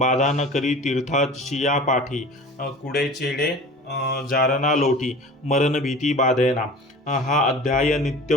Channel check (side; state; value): both; normal; correlation 0.39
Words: न करी तीर्थाचिया पाठी. कुडे चेडे जारना लोटी, मरण भीती बाधेना. हा अध्याय नित्य